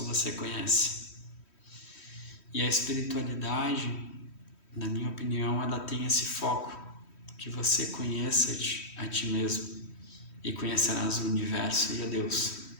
você conhece. E a espiritualidade, na minha opinião, ela tem esse foco, que você conheça a ti mesmo e conhecerás o universo e a Deus.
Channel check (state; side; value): late; right; 3.1 ms